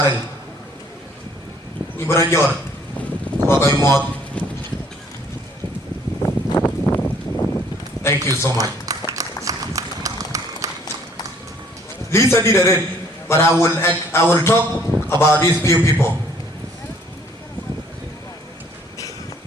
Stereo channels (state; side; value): normal; both; correlation 0.60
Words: Ibrajor, Kwagay Mod. Thank you so much. Lisa did it, but I will talk about these few people.